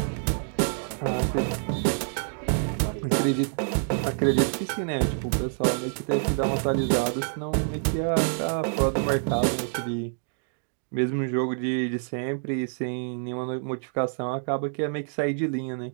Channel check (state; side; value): silent; left; digital silence